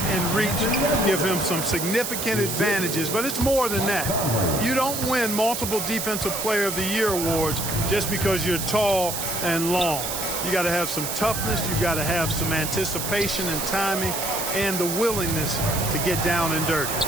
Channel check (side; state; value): right; noise; hiss, 4 dB below the sound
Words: and reach give him some significant advantages, but it's more than that. You don't win multiple Defensive Player of the Year awards just because you're tall and long. You got to have some toughness, you got to have some anticipation and timing, and the willingness to get down and dirty.